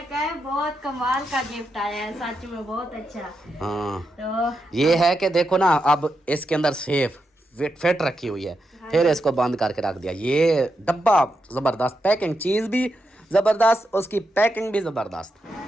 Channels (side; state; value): both; normal; correlation 0.85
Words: कहा बहुत कमाल का गिफ्ट आया है, सच में बहुत अच्छा। हाँ तो ये है कि देखो ना अब इसके अंदर सेफ फिट रखी हुई है, फिर इसको बंद करके रख दिया। ये डब्बा जबरदस्त, पैकिंग चीज भी जबरदस्त, उसकी पैकिंग भी जबरदस्त।